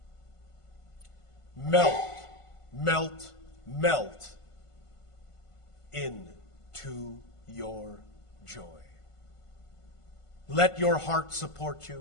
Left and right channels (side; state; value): right; late; 1.5 ms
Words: Melt, melt, melt into your joy. Let your heart support